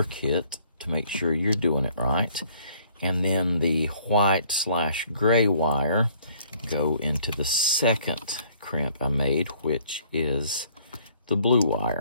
kit to make sure you're doing it right. And then the white/gray wire go into the second crimp I made, which is the blue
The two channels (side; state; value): both; inverted; correlation -0.60